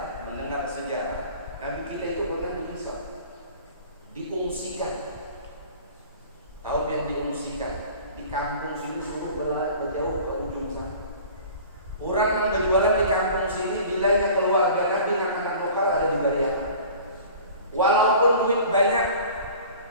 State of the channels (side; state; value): both; inverted; correlation -0.44